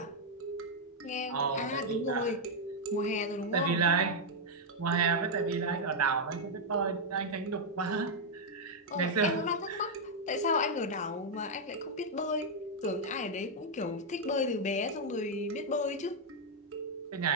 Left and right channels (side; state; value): both; normal; correlation -0.02